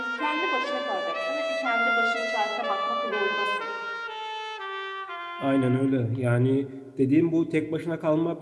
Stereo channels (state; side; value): identical; both; correlation 1.00